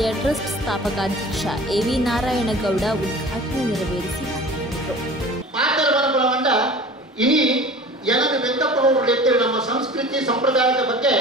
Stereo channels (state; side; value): normal; both; correlation 0.41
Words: ಟ್ರಸ್ಟ್ ಸ್ಥಾಪಕಾಧ್ಯಕ್ಷ ಎವಿ ನಾರಾಯಣಗೌಡ ಉದ್ಘಾಟನೆ ನೆರವೇರಿಸಿ ಮಾತನಾಡುವಂತ ಇನಿ ಜನರು ವ್ಯಕ್ತಪಡುವ ನಮ್ಮ ಸಂಸ್ಕೃತಿ ಸಂಪ್ರದಾಯದ ಬಗ್ಗೆ